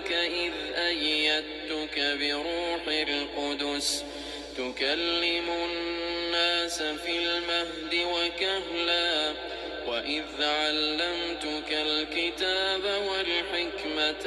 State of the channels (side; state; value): both; identical; correlation 1.00